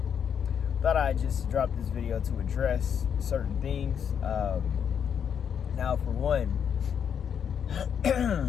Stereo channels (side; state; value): right; quieter; 7.9 dB